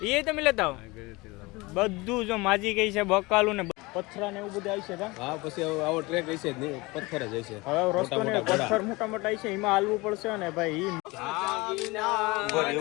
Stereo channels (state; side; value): quieter; right; 23.6 dB